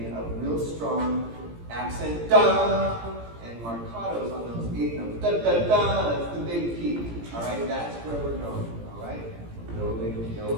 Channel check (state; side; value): late; left; 17 ms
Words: a real strong accent, da, and marcatos on those 8 notes. Da, da, da, that's the big peak. All right, that's where we're going. All right, building,